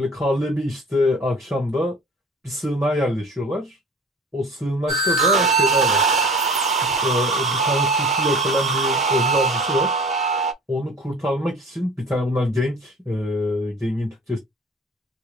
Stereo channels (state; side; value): normal; both; correlation 0.44